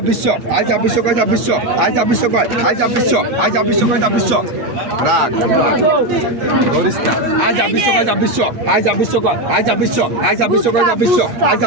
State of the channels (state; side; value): late; left; 8.3 ms